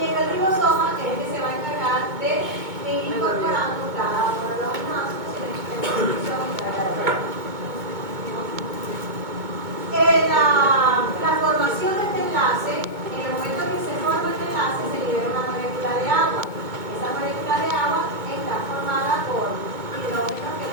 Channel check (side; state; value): left; late; 2.2 ms